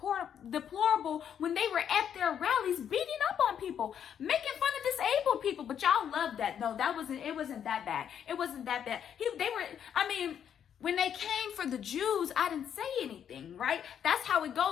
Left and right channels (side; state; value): right; quieter; 8.7 dB